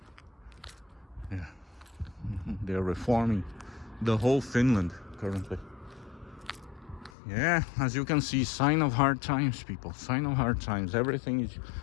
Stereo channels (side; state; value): right; drops out; at 7.1 s